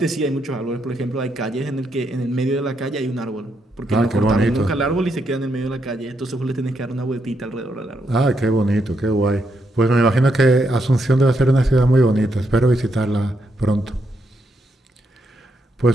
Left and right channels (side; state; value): both; normal; correlation 0.79